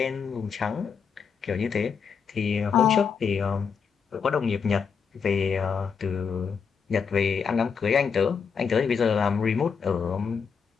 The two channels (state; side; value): quieter; right; 6.2 dB